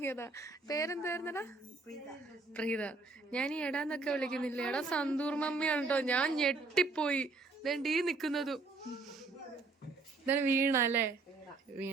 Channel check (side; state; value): left; quieter; 3.7 dB